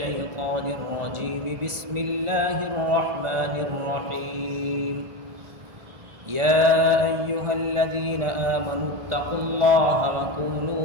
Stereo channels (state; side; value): late; left; 1.5 ms